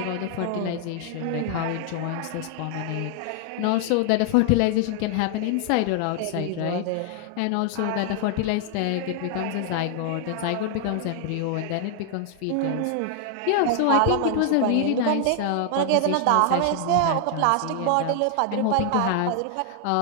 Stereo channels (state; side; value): different; both; correlation 0.00